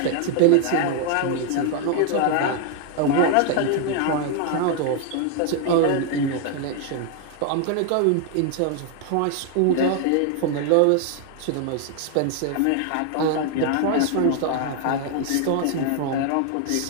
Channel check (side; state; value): both; different; correlation 0.00